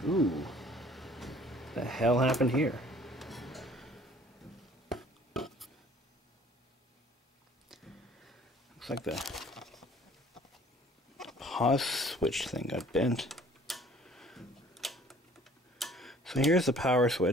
Ooh. The hell happened here? Looks like the pause switch thing got bent. So here's the power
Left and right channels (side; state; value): both; normal; correlation 0.54